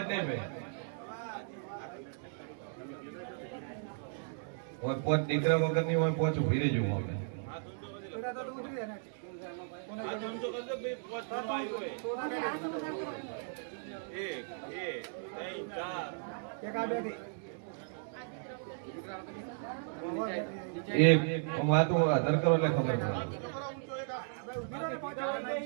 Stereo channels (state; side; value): silent; left; digital silence